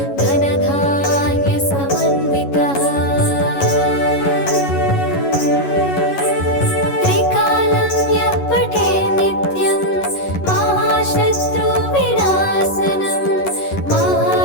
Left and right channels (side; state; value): right; late; 11 ms